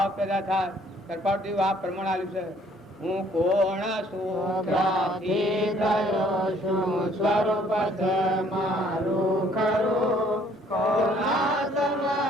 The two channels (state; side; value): normal; both; correlation 0.61